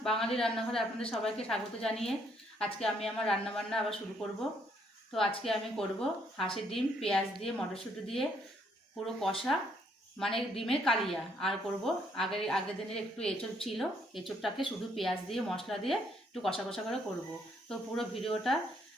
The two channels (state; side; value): normal; both; correlation 0.69